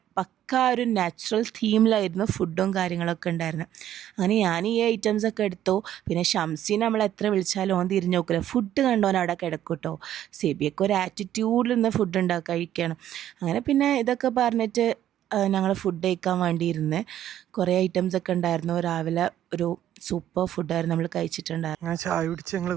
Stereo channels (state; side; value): quieter; left; 11.6 dB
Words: പക്ക ഒരു നാച്ചുറൽ തീമിലായിരുന്നു ഫുഡും കാര്യങ്ങളൊക്കെ ഉണ്ടായിരുന്നു. അങ്ങനെ ഞാൻ ഈ ഐറ്റംസൊക്കെ എടുത്തു. പിന്നെ ഷംസീനെ നമ്മൾ എത്ര വിളിച്ചാലും ഓൻ തിരിഞ്ഞു നോക്കില്ല, ഫുഡ് കണ്ടോൻ അവിടെ കിടക്കും കേട്ടോ. സെബിയൊക്കെ ഒരു ആറ്റിറ്റ്യൂഡിൽ നിന്ന് ഫുഡ് കഴിക്കണം. അങ്ങനെ പിന്നെ ഇതൊക്കെ പറഞ്ഞിട്ട് ഞങ്ങൾ ഫുഡ് കഴിക്കാൻ വേണ്ടിയിരുന്ന് കുറേ ഐറ്റംസൊക്കെ ഉണ്ടായിരുന്നു. രാവിലെ ഒരു സൂപ്പർ ഫുഡായിരുന്നു നമ്മൾ കഴിച്ചിട്ടുണ്ടായിരുന്നു. ഞാൻ ചായ കുടിച്ച് ഞങ്ങൾ